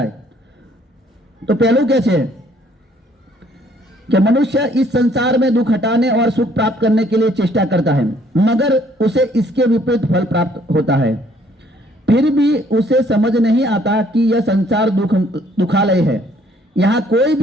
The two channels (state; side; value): normal; both; correlation 0.63